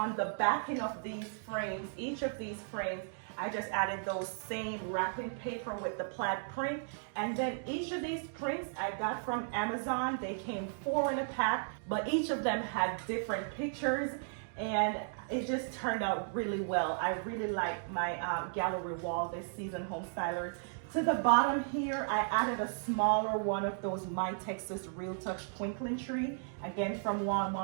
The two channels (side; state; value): left; silent; digital silence